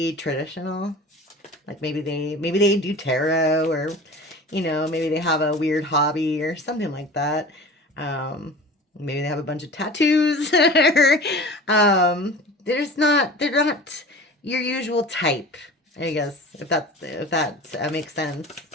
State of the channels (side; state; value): both; normal; correlation 0.38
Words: traditional. Like maybe they do tarot, or you know, maybe they have a weird hobby or something like that. Maybe they have a bunch of tattoos. They're not your usual type, I guess, if that makes sense.